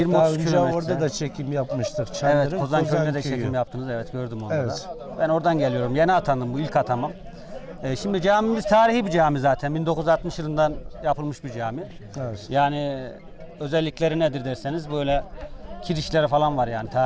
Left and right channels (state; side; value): identical; both; correlation 1.00